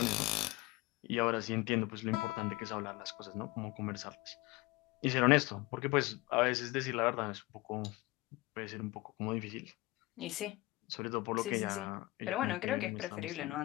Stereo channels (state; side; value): quieter; right; 21.0 dB